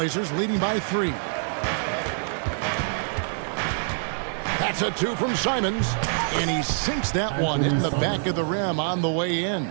leading by 3. That's a 2 from Simons, and he sinks that one in the back of the rim on the way in.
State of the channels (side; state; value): left; silent; digital silence